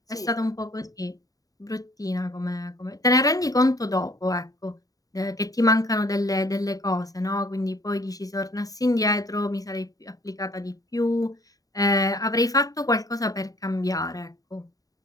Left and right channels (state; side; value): late; right; 0.18 ms